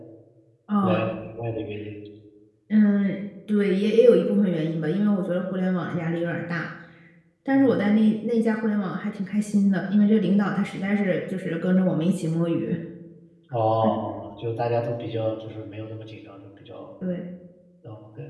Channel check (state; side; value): identical; both; correlation 1.00